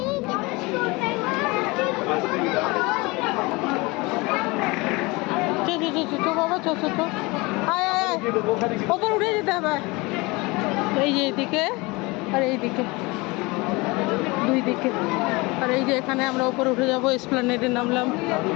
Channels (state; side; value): quieter; right; 24.5 dB